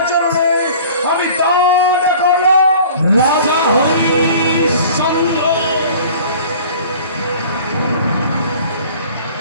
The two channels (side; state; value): both; inverted; correlation -0.46